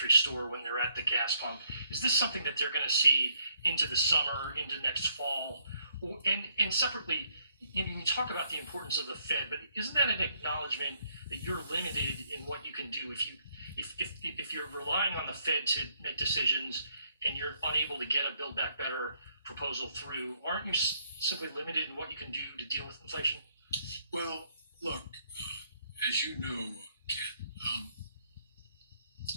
store, when they're at the gas pump. Is this something that they're going to see into the summer, into next fall? And separately, you talk about the importance of the Fed, but isn't that an acknowledgement that you're limited in what you can do if you're relying on the Fed to make decisions and you're unable to get a Build Back Better proposal through? Aren't you simply limited in what you can do to deal with inflation? Well, look, as you know, Ken,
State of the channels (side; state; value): both; inverted; correlation -0.72